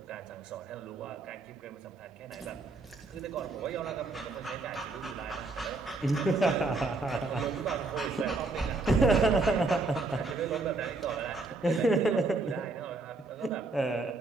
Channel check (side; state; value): left; quieter; 3.4 dB